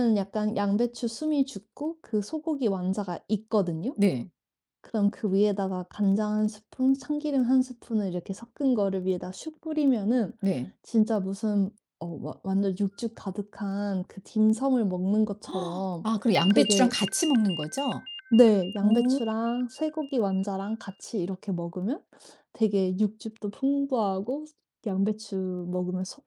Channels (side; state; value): both; identical; correlation 1.00